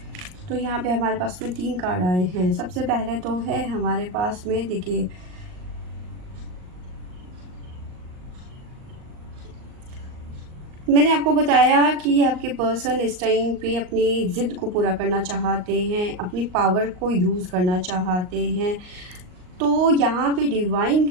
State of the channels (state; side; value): late; left; 38 ms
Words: तो यहाँ पे हमारे पास में 3 कार्ड आए हैं। सबसे पहले तो है हमारे पास में, देखिए मैंने आपको बताया कि आपके पर्सन इस टाइम पे अपनी ज़िद को पूरा करना चाहते हैं, अपनी पावर को यूज़ करना चाहते हैं। तो यहाँ पे डिवाइन